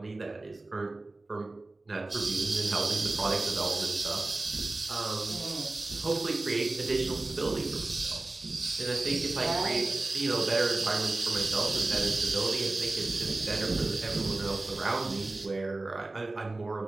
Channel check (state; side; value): quieter; left; 3.0 dB